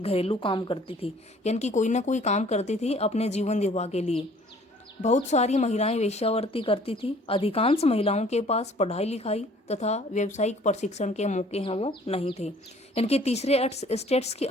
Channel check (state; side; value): normal; both; correlation 0.55